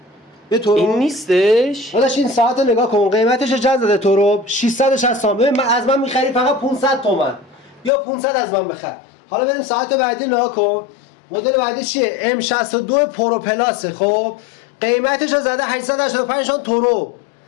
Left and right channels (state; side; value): drops out; right; at 7.9 s